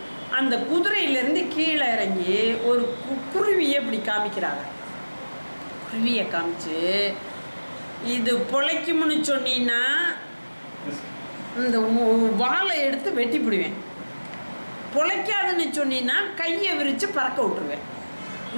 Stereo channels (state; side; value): inverted; both; correlation -1.00